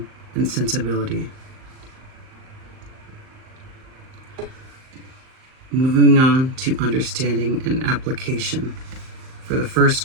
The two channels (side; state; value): left; late; 38 ms